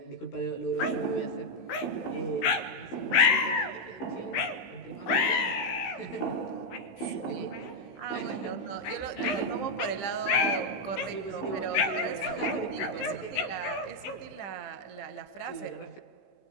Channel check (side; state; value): right; late; 16 ms